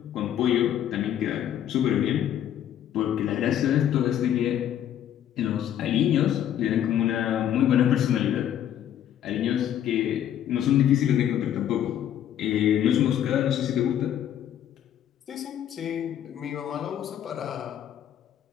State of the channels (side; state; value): right; quieter; 10.5 dB